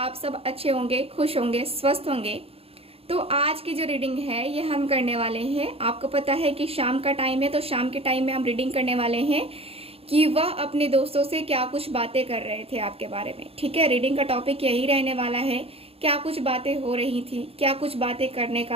सब अच्छे होंगे, खुश होंगे, स्वस्थ होंगे। तो आज की जो रीडिंग है ये हम करने वाले हैं। आपको पता है कि शाम का टाइम है, तो शाम के टाइम में हम रीडिंग करने वाले हैं कि वह अपने दोस्तों से क्या कुछ बातें कर रहे थे आपके बारे में। ठीक है, रीडिंग का टॉपिक यही रहने वाला है, क्या कुछ बातें हो रही थी, क्या कुछ बातें करने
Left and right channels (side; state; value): left; late; 0.28 ms